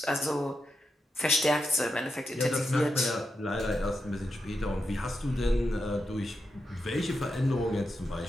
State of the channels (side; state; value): both; normal; correlation 0.87